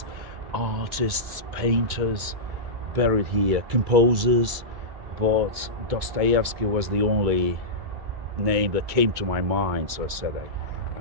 artists, painters buried here, composers, but Dostoevsky was the only name that came to my mind, so I said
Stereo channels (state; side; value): late; left; 2.2 ms